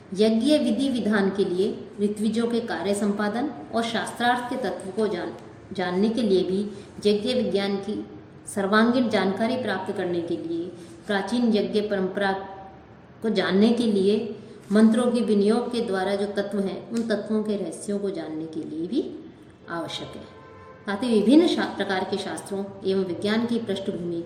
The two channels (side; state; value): both; identical; correlation 1.00